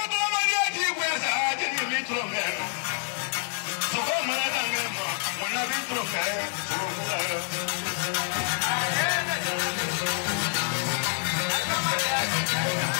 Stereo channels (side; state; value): right; silent; 60 dB below the other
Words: tu mana dia biasa jadi ni cuma meh. So come and hang him, when I be through there, so I'm